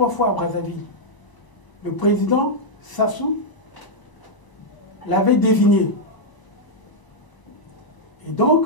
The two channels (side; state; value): right; late; 1.0 ms